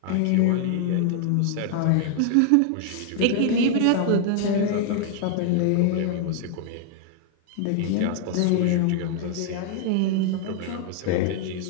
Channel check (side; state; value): both; different; correlation 0.00